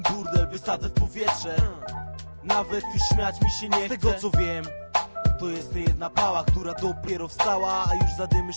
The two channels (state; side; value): inverted; both; correlation -1.00